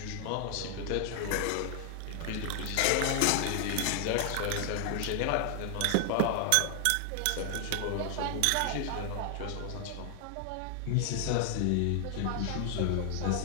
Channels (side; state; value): both; different; correlation 0.00